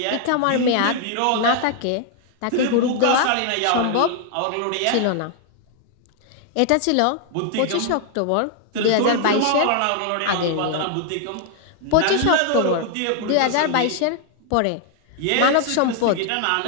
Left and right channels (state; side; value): different; both; correlation 0.00